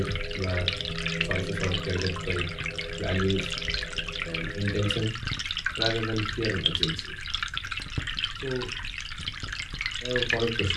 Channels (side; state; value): both; identical; correlation 1.00